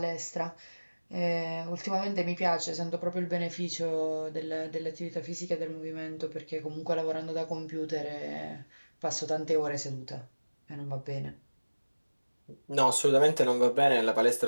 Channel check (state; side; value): inverted; both; correlation -1.00